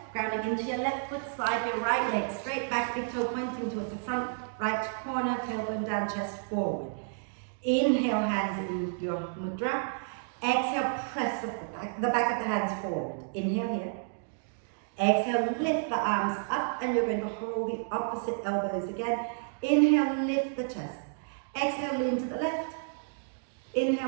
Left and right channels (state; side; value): silent; left; digital silence